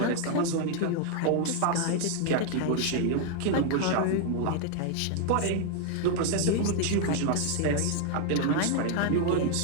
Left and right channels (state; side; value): different; both; correlation 0.00